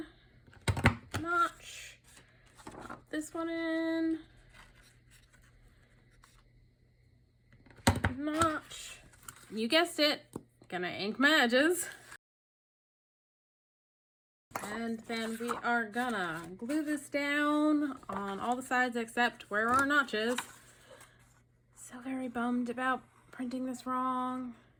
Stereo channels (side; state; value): both; identical; correlation 1.00